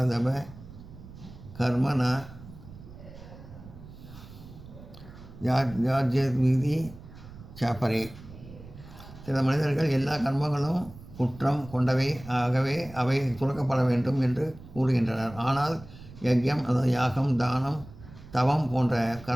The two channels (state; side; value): noise; right; rumble, 17 dB below the sound